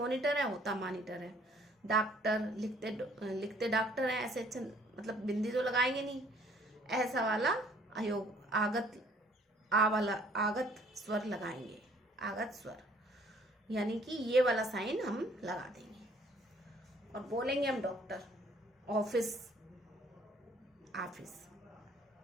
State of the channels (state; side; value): normal; both; correlation 0.59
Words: है, होता मॉनिटर है। डॉक्टर, लिखते डॉक्टर है, ऐसे मतलब बिंदी तो लगाएंगे नहीं, ऐसा वाला अयोग, आगत, वाला आगत स्वर लगाएंगे, आगत स्वर। यानी कि ये वाला साइन हम लगा देंगे और बोलेंगे हम डॉक्टर, ऑफिस, ऑफिस।